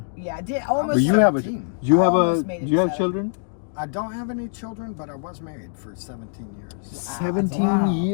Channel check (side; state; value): right; silent; digital silence